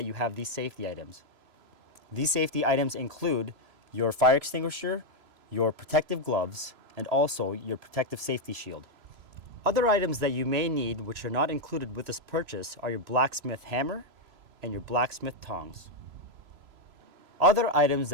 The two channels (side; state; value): left; late; 3.0 ms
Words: you have these safety items. These safety items include your fire extinguisher, your protective gloves, and also your protective safety shield. Other items that you may need which are not included with this purchase are your blacksmith hammer and your blacksmith tongs. Other items